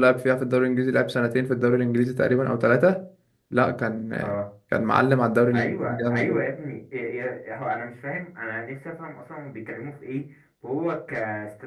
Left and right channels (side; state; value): both; identical; correlation 1.00